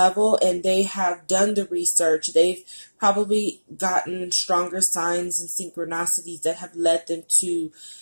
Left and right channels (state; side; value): inverted; both; correlation -1.00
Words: and they have done the research. They've probably gotten stronger signs and synchronicities that have led them to